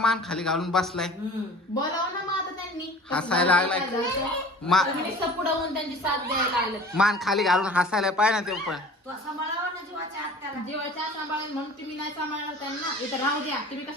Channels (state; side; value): normal; both; correlation 0.43